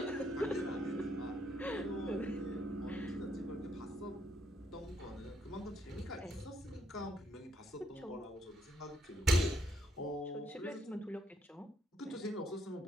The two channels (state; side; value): normal; both; correlation 0.73